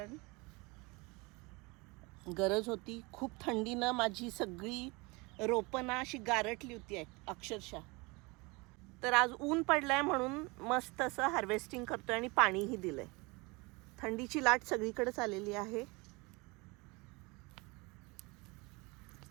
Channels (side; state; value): left; quieter; 26.1 dB